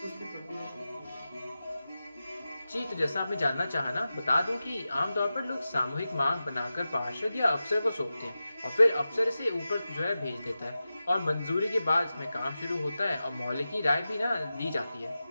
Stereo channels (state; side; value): inverted; both; correlation -0.94